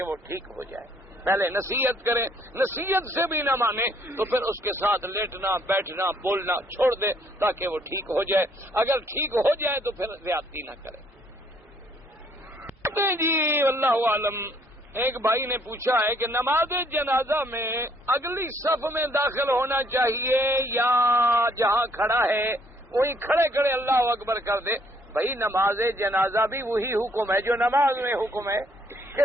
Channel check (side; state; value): both; normal; correlation 0.65